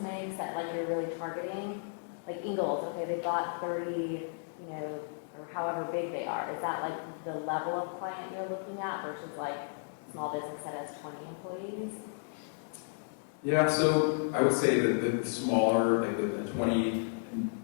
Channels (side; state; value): right; silent; digital silence